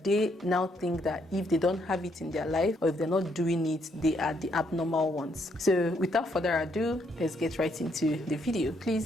they now think that if they don't have it in their life or if they're not doing it, they are the abnormal ones. So without further ado, let's get right into the video.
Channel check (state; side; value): normal; both; correlation 0.73